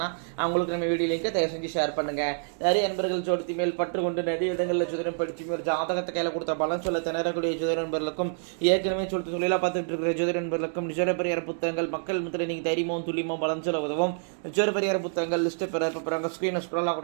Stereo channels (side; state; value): left; silent; digital silence